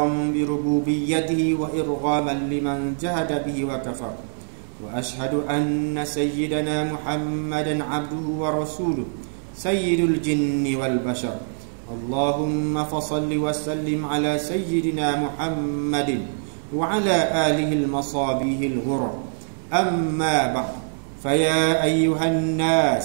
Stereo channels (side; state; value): left; silent; 61 dB below the other